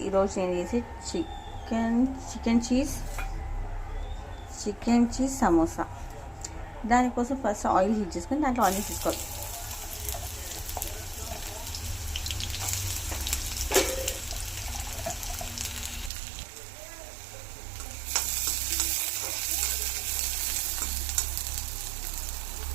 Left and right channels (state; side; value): drops out; left; at 16.1 s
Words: ఈరోజు నేను చేసి చికెన్ చీజ్ సమోసా. దానికోసం ఫస్ట్ ఆయిల్ హీట్ చేసుకొని దాంట్లో ఆనియన్స్ తీసుకోవాలి.